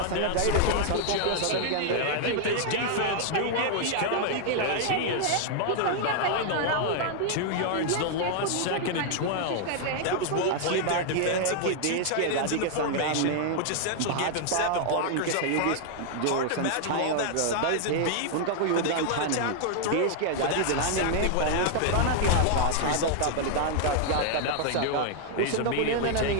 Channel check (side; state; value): both; different; correlation 0.00